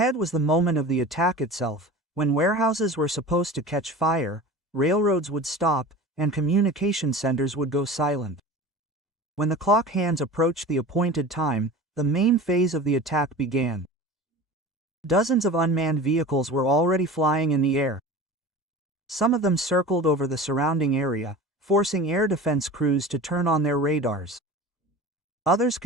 was the moment of the attack itself, when warehouses were supposed to catch fire, railroads would stop, and communication centers would go silent. When the clock hands approached the appointed time, the main phase of the attack began. Dozens of unmanned vehicles were already flying in the air. Some of them circled over the surrounding area, forcing air defense crews to turn on their radars. Others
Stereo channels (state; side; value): normal; both; correlation 0.35